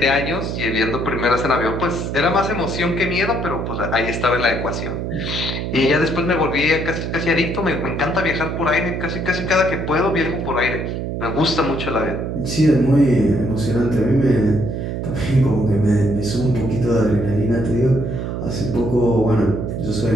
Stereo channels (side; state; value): right; noise; hum, 4 dB below the sound